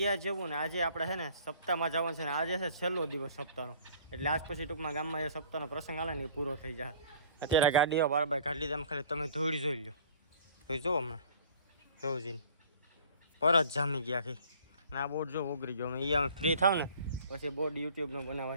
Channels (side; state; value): both; inverted; correlation -0.51